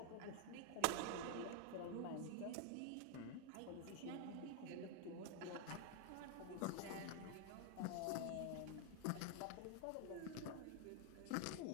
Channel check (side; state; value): both; different; correlation 0.00